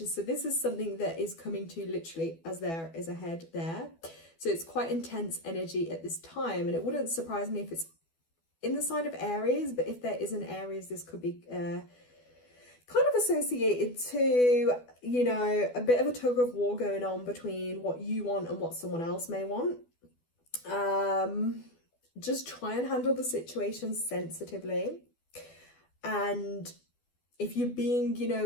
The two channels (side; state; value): right; late; 12 ms